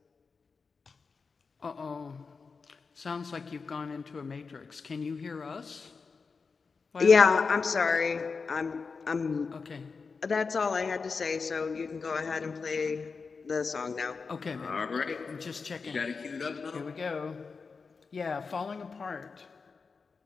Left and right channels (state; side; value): quieter; right; 4.8 dB